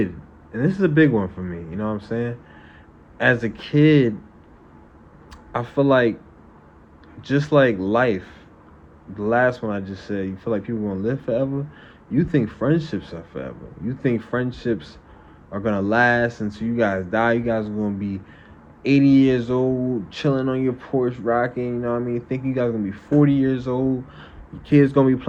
and this is a big one for me, you know what I'm saying? As a kid, I feel like just like life, the last one I just said, you feel like people gonna live forever. You think friendships are forever. You think friendships are gonna last until you guys die. You guys are gonna be 80 years old, chilling on your porch, rocking, you know what I mean? Think you guys gonna be 40 years old. Your kids gonna be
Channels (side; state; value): both; identical; correlation 1.00